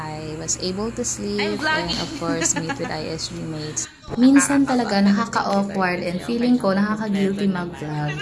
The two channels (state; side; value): identical; both; correlation 1.00